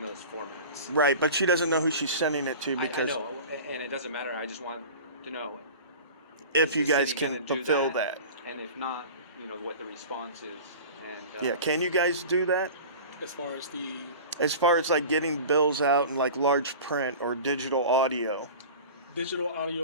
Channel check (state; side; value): inverted; both; correlation -0.37